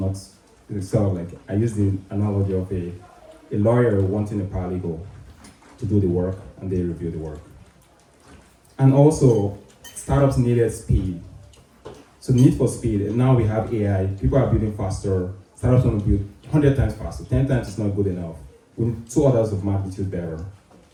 sort of like, I use the analogy of a lawyer wanting a paralegal to do the work, and they review the work. And also, startups needed speed. So the need for speed, and now we have AI, people are building faster, startups want to build 100 times faster, 10 times is not good enough. We need 2 orders of magnitude better.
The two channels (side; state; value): both; identical; correlation 1.00